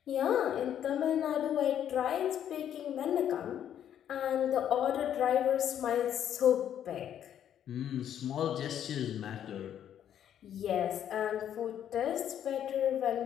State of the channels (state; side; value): quieter; right; 10.0 dB